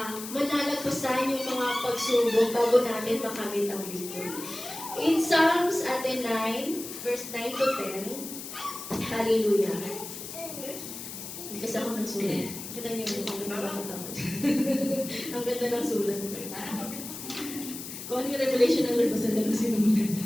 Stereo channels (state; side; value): noise; left; hiss, 10 dB below the sound